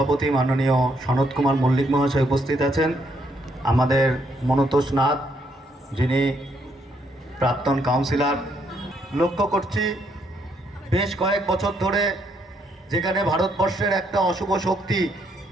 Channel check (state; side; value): normal; both; correlation 0.73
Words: মাননীয় সনৎ কুমার মল্লিক মহাশয় উপস্থিত আছেন, আমাদের মনতোষ নাথ যিনি প্রাক্তন কাউন্সিলর। লক্ষ্য করছি বেশ কয়েক বছর ধরে যেখানে ভারতবর্ষের একটা অশুভ শক্তি